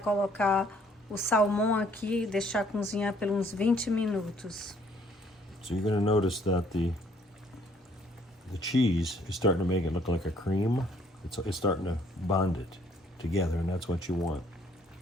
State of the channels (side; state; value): both; normal; correlation 0.63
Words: o salmão aqui e deixar cozinhar por uns 20 minutos. So you're going to notice that the cheese is starting to make it look like a cream. It's starting to bond it together, and that's what you want.